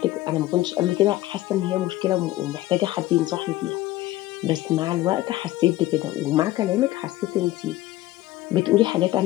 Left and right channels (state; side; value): quieter; right; 16.0 dB